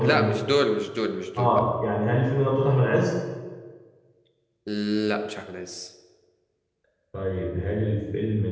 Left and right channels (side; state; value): both; identical; correlation 1.00